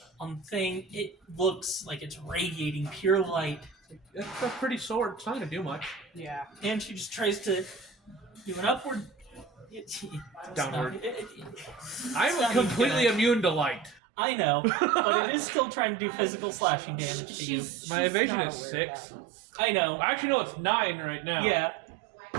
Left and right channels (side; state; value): left; drops out; at 14.0 s